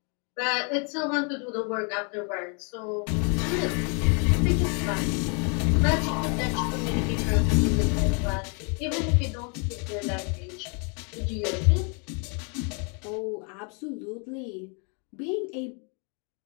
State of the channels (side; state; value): right; quieter; 37.4 dB